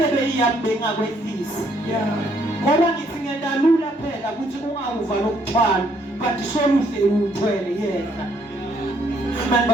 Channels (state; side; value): normal; both; correlation 0.69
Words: beyiyambenga kwehlisi ngoba ngithi ngiyadalula phela ukuthi ungawuva lo mthwalo but soluhle uthwele yena. Amen